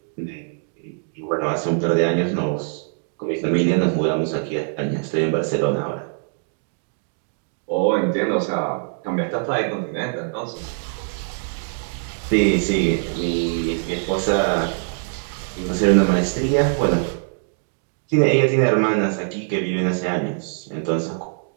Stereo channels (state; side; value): silent; left; digital silence